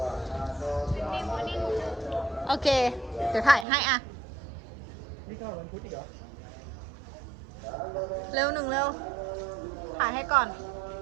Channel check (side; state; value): left; drops out; at 3.7 s